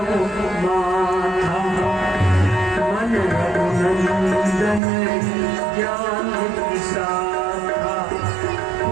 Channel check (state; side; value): drops out; left; at 4.8 s